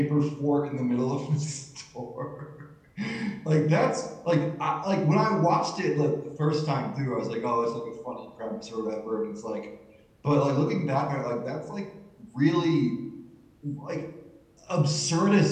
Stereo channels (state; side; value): identical; both; correlation 1.00